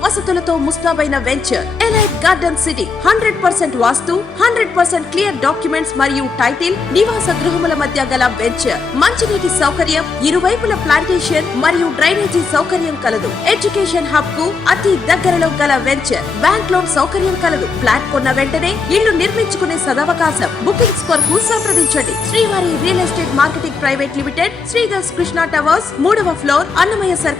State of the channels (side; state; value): right; quieter; 4.7 dB